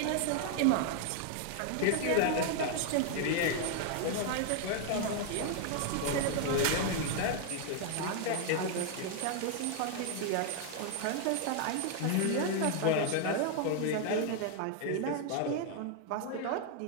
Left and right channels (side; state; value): both; different; correlation 0.00